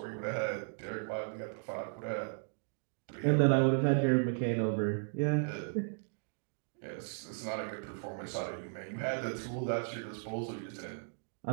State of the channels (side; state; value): left; silent; digital silence